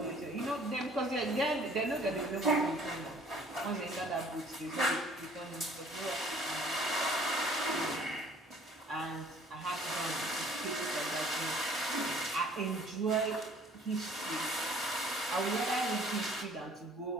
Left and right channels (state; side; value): normal; both; correlation 0.55